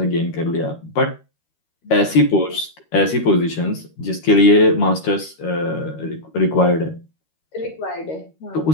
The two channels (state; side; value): late; right; 13 ms